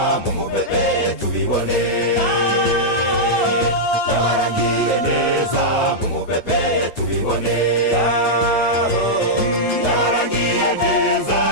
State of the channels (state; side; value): late; right; 9.0 ms